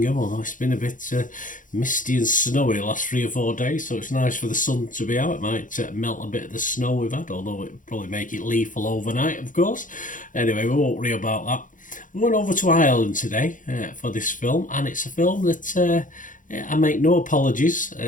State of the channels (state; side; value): late; right; 0.38 ms